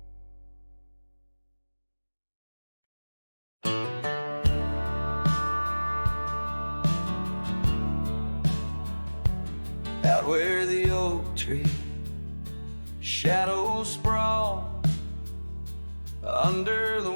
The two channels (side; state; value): both; inverted; correlation -1.00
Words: Out where the oak tree shadows sprawl, under the